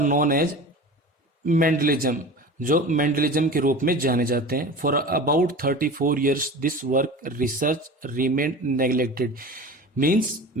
known as Mendelism, जो मेंडलिज्म के रूप में जाने जाते हैं। For about 34 years this work research remain neglected, means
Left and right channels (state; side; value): normal; both; correlation 0.35